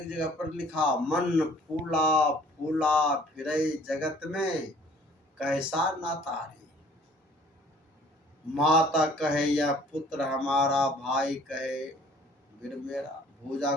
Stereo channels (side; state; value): both; normal; correlation 0.55